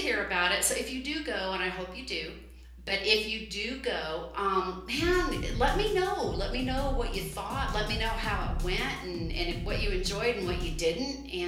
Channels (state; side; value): identical; both; correlation 1.00